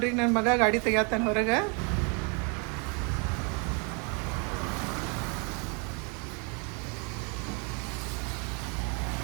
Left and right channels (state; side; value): quieter; left; 34.7 dB